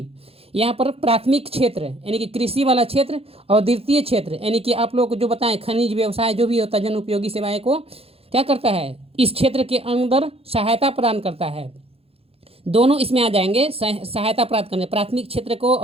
यहाँ पर प्राथमिक क्षेत्र यानी कि कृषि वाला क्षेत्र और द्वितीय क्षेत्र यानी कि आप लोग को जो बताएं खनिज व्यवसाय जो भी होता है जन उपयोगी सेवाएं को क्या करता है, इस क्षेत्र के अंदर सहायता प्रदान करता है। दोनों इसमें आ जाएंगे, सहायता प्राप्त करने, प्राथमिक क्षेत्र को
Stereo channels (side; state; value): left; late; 0.28 ms